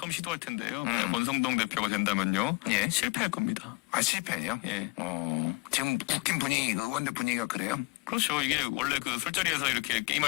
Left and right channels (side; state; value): right; quieter; 25.5 dB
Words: 시도할 텐데요. 권성동 대표가 된다면요. 예. 실패할 겁니다. 아, 실패해요? 예. 지금 국힘 분위기, 의원들 분위기가 그래요? 그렇죠. 이게 원래 그 술자리에서 이렇게